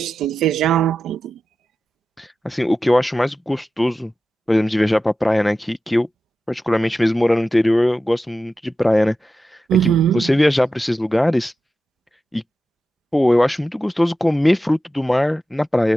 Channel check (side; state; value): both; normal; correlation 0.92